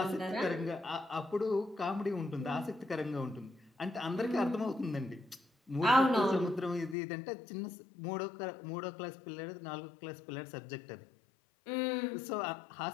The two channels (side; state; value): right; drops out; at 7.0 s